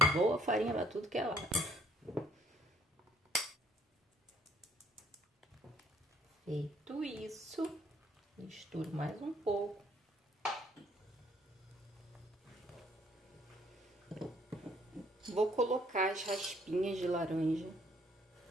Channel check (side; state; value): both; normal; correlation 0.63